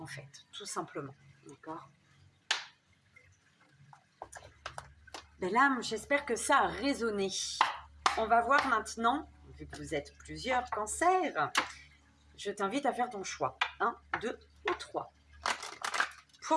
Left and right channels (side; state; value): both; identical; correlation 1.00